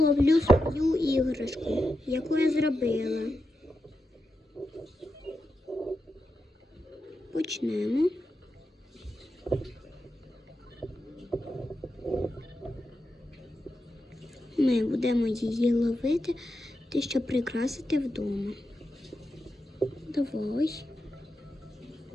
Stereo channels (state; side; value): normal; both; correlation 0.88